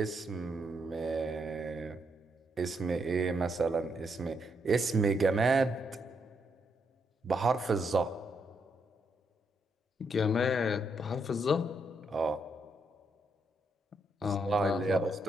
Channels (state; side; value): normal; both; correlation 0.77